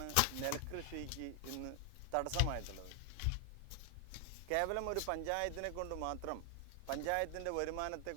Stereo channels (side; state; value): both; different; correlation 0.00